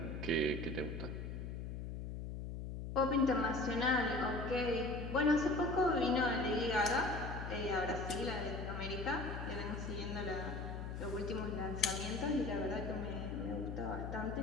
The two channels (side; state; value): left; noise; hum, 6 dB below the sound